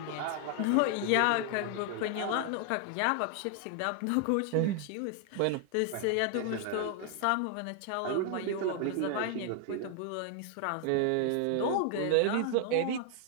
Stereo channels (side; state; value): both; different; correlation 0.00